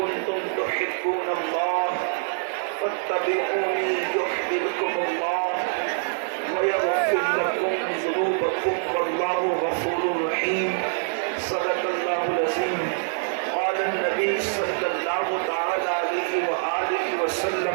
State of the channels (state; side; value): silent; left; digital silence